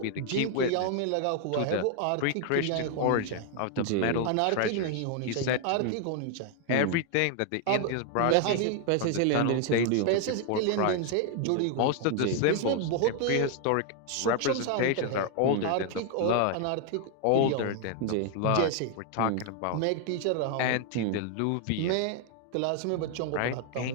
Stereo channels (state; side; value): different; both; correlation 0.00